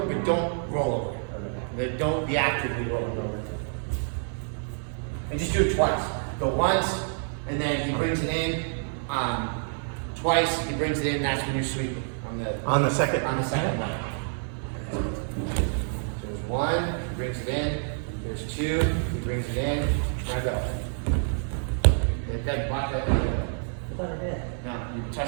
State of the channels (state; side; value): silent; left; digital silence